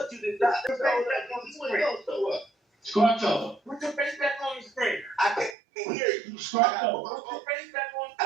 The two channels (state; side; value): drops out; left; at 5.6 s